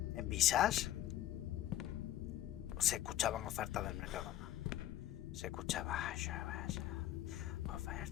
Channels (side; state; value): right; quieter; 13.1 dB